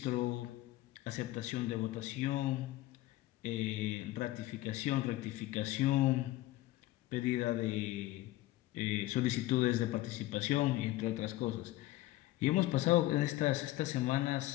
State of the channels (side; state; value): right; quieter; 16.8 dB